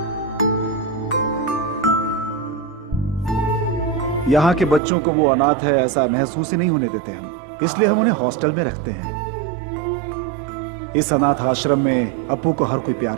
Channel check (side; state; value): left; drops out; at 4.8 s